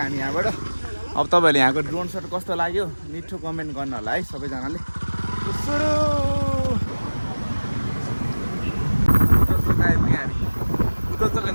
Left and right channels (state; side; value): inverted; both; correlation -1.00